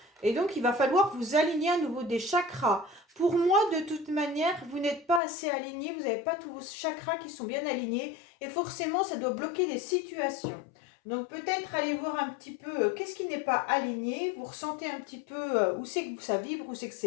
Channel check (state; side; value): drops out; right; at 5.2 s